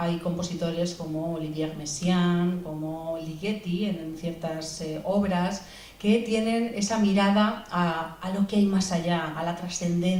compositores como Olivier Messiaen, como Ligeti en ciertas obras, que tienen esa mirada a lo que hay más allá, a la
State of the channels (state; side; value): identical; both; correlation 1.00